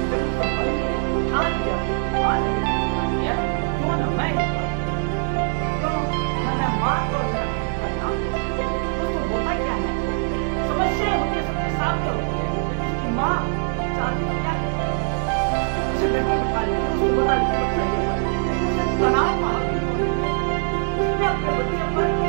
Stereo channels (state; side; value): silent; left; digital silence